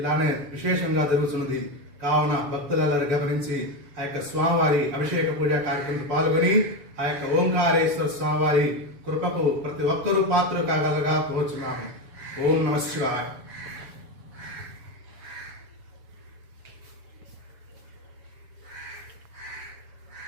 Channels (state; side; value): late; left; 7.1 ms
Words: విశేషంగా జరుగుతున్నది. కావున భక్తులందరూ గమనించి ఆ యొక్క స్వామివారి అభిషేక పూజా కార్యక్రమంలో పాల్గొని ఆ యొక్క ఓంకారేశ్వర స్వామివారి కృపకు ప్రతి ఒక్కరూ పాత్రలు కాగలగా కోరుచున్నాము. ఓం నమః శివాయ.